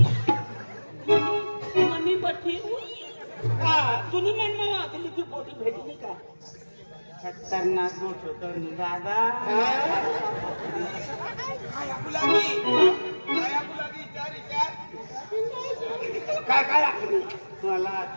मनी पट्टी तुम्ही म्हणणं दिल्लीची पोटी भेटली का खतरनाक मोठ होतं दादा काय काय आखली मला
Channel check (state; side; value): inverted; both; correlation -1.00